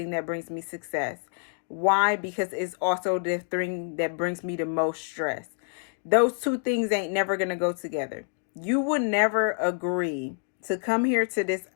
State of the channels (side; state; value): right; silent; 56 dB below the other